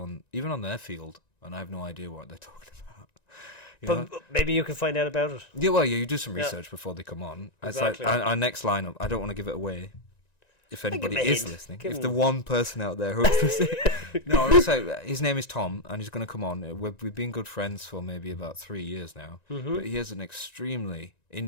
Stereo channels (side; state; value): right; late; 1.9 ms